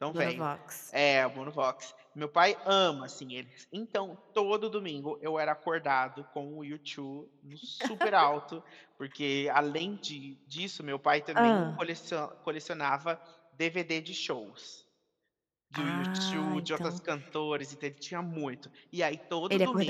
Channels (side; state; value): both; identical; correlation 1.00